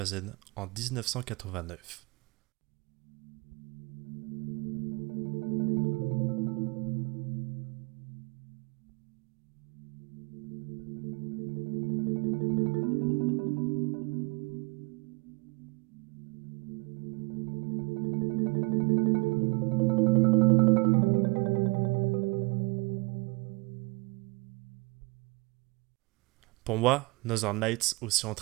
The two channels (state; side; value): quieter; left; 26.7 dB